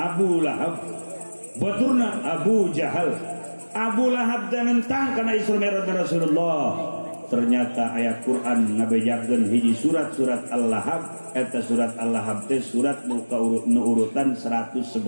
Lahab, baturna Abu Jahal. Abu Lahab dan nentang karena Isra Mi'rajnya Rasulullah. Ternyata ayat Quran ngabejakeun hiji surat-surat Al-Lahab. Eta surat Al-Lahab teh surat nu urutan 111.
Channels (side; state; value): both; inverted; correlation -1.00